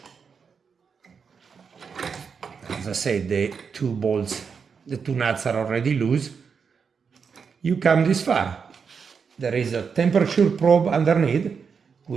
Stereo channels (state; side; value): quieter; left; 6.0 dB